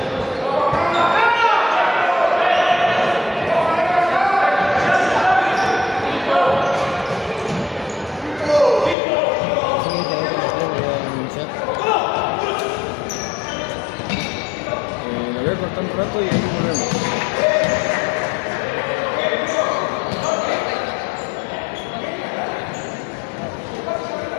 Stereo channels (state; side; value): drops out; right; at 9.0 s